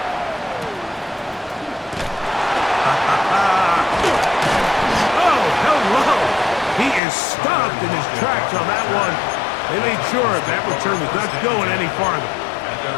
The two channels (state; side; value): drops out; right; at 7.0 s